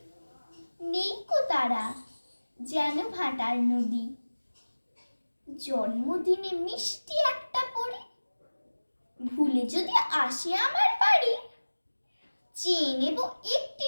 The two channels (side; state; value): both; inverted; correlation -1.00